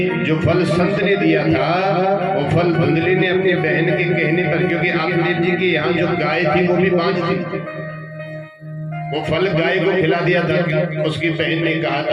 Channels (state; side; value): identical; both; correlation 1.00